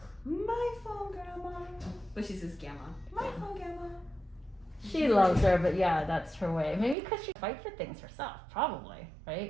My phone, grandma. But she says Gamma. My phone, Gamma. She loves her, but yeah, that's her way. Maybe because she fights for things herself, probably,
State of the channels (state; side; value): drops out; left; at 7.0 s